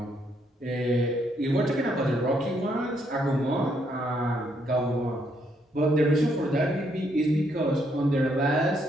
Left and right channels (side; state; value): both; normal; correlation 0.73